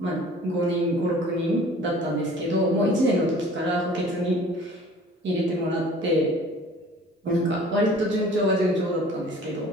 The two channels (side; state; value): both; normal; correlation 0.48